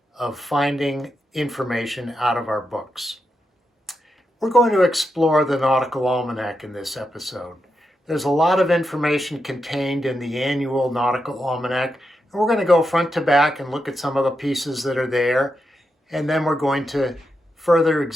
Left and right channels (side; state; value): both; normal; correlation 0.86